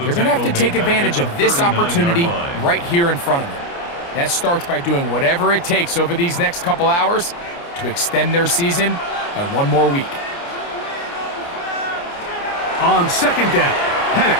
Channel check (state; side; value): late; right; 29 ms